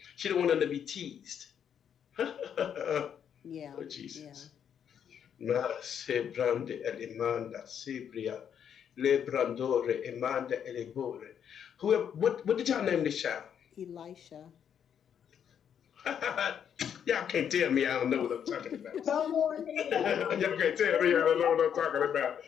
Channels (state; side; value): quieter; right; 8.4 dB